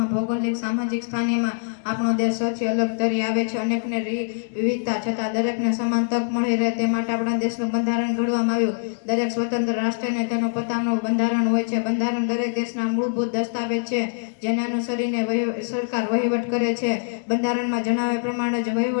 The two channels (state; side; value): silent; right; digital silence